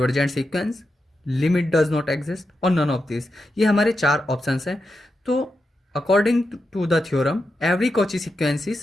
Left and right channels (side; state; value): both; normal; correlation 0.87